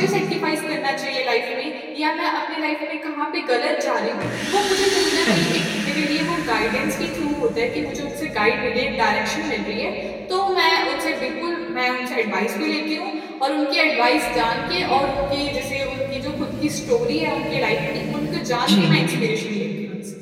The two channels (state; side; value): identical; both; correlation 1.00